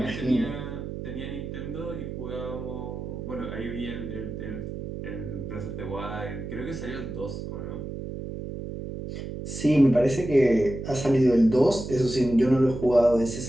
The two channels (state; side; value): noise; right; hum, 7 dB below the sound